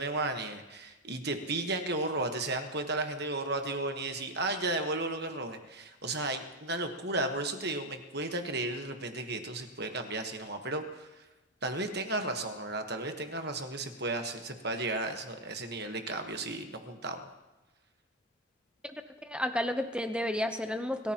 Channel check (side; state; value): both; normal; correlation 0.10